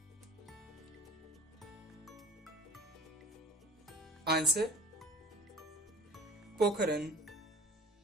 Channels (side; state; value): both; normal; correlation 0.45